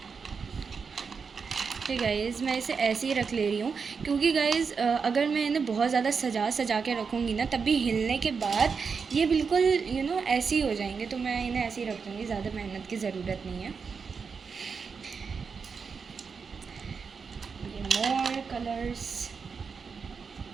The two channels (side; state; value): left; quieter; 5.6 dB